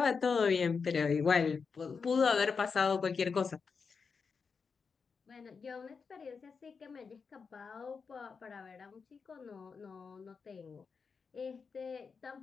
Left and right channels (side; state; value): right; quieter; 5.4 dB